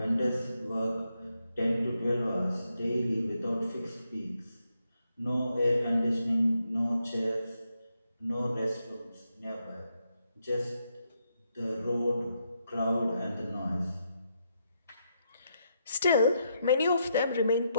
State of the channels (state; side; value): inverted; both; correlation -0.80